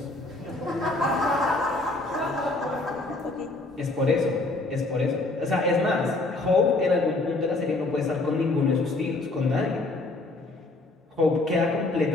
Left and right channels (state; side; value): quieter; right; 3.0 dB